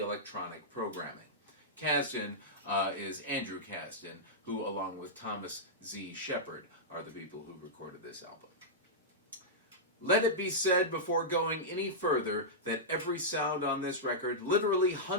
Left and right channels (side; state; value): both; normal; correlation -0.11